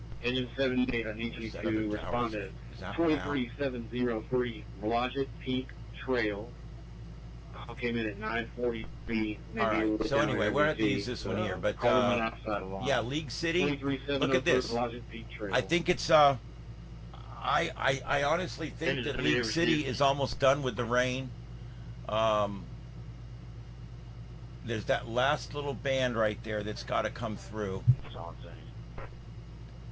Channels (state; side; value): identical; both; correlation 1.00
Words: Engine 78, I need you to respond to 23703 Blodgett Peak Trail, came in at 9:43. All right. So anyway, we're going to have to use this one here. But, yeah, League City, look at this. I think it's, I honestly think that League City is almost done with the rain. There's that last little band right there that's got to come through.